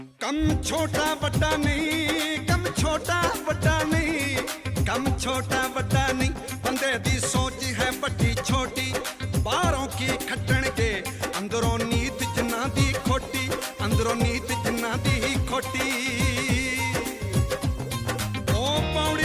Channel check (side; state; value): both; identical; correlation 1.00